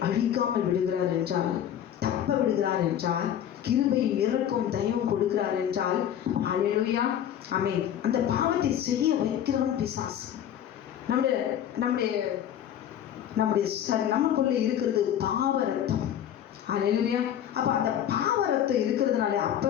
அழிக்காமல் விடுகிறார் என்றால், தப்ப விடுகிறார் என்றால், கிருபை இறக்கும் தயவும் கொடுக்கிறார் என்றால், ஹல்லேலூயா, அந்த பாவத்தை செய்ய வைக்கிறவன் பிசாசு. நமக்குள்ள இருக்கிறது பாவ ரத்தம். ஹல்லேலூயா. அப்ப அந்த பாவ ரத்தம் இருக்கிறதுனால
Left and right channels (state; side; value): quieter; right; 10.2 dB